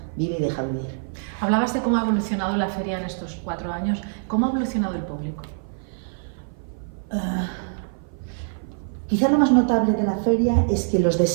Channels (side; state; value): left; silent; 55 dB below the other